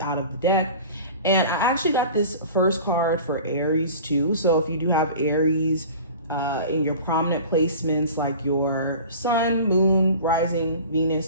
out of the deck, and I actually got this first card for Aries too. So if you do have Aries in your prominent placements like your sun, moon, rising,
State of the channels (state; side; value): inverted; both; correlation -0.40